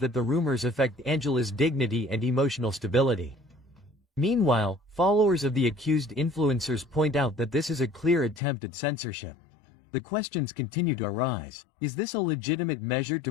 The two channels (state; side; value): drops out; right; at 8.4 s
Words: the rumors affect Angela's dignity and emotional stability. Meanwhile, followers of the accused influencers point out that this is a clear attempt at censorship. The questions continue to arise. Is this a legitimate measure to